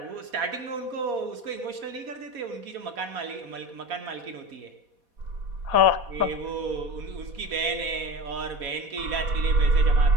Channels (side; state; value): left; late; 4.2 ms